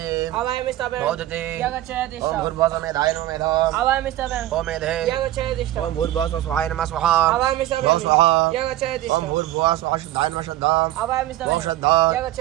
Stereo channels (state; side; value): quieter; left; 14.6 dB